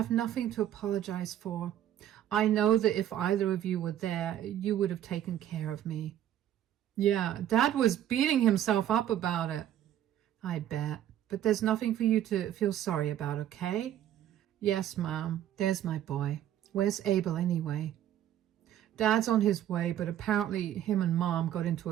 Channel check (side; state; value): left; quieter; 11.5 dB